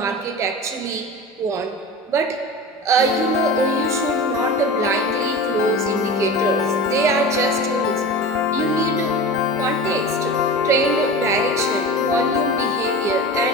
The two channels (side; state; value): both; normal; correlation 0.31